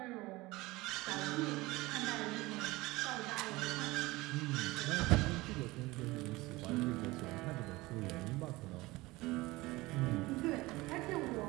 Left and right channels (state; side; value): quieter; left; 20.8 dB